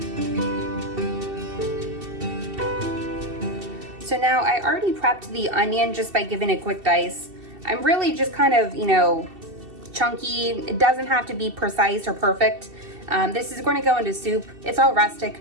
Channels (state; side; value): late; left; 2.7 ms